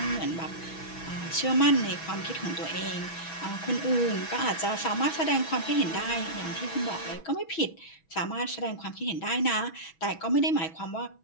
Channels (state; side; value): late; right; 6.2 ms